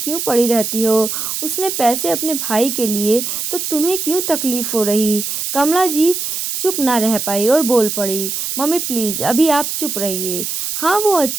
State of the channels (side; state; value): right; noise; hiss, 3 dB below the sound